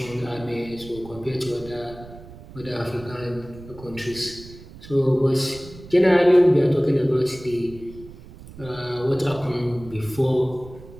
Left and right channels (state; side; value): noise; right; rumble, 18 dB below the sound